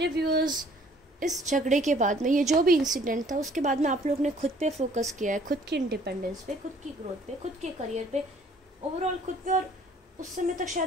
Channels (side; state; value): both; normal; correlation 0.57